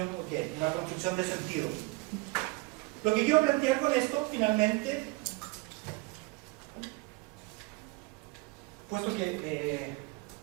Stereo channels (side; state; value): left; quieter; 23.6 dB